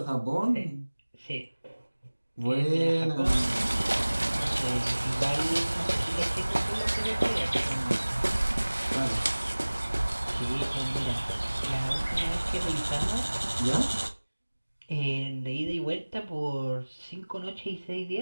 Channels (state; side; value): inverted; both; correlation -1.00